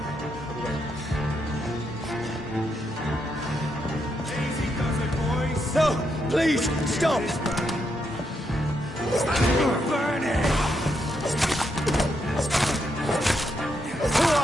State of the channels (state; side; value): normal; both; correlation 0.80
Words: Easy does it, boys. No, please, stop! Burn it! Who